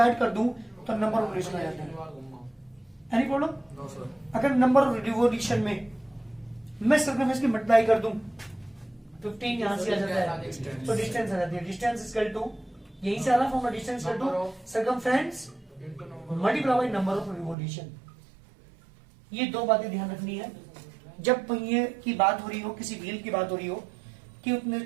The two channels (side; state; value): left; drops out; at 17.6 s